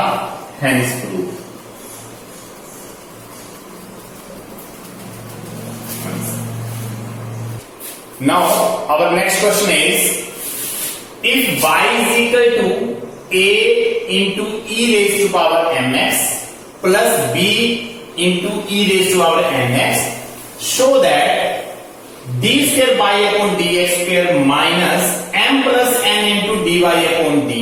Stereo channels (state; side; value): identical; both; correlation 1.00